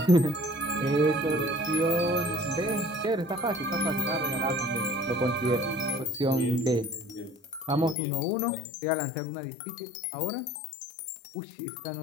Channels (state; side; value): drops out; right; at 8.0 s